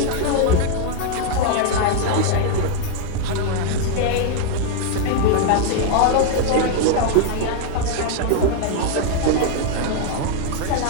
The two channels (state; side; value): different; both; correlation 0.00